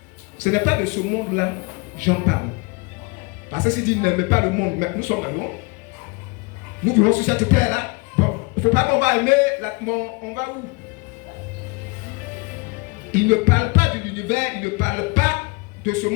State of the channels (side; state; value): right; quieter; 27.8 dB